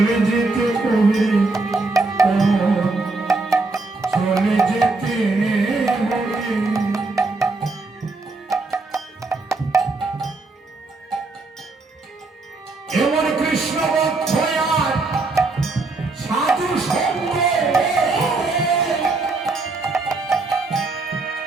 যেতে হবে, চলে যেতে হবে। এমন কৃষ্ণ ভক্ত আর সাধু সঙ্গ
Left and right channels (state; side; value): quieter; left; 3.5 dB